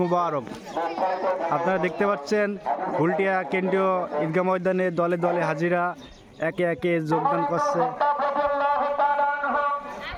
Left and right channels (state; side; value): identical; both; correlation 1.00